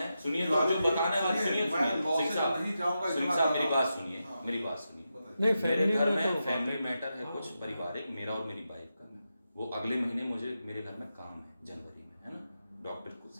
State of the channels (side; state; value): both; inverted; correlation -0.88